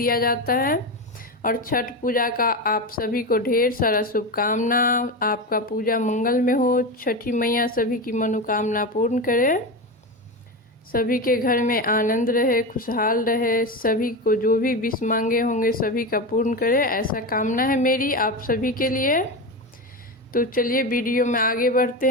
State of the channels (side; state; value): both; normal; correlation 0.19